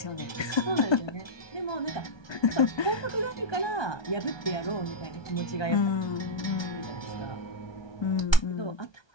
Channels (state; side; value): late; right; 1.3 ms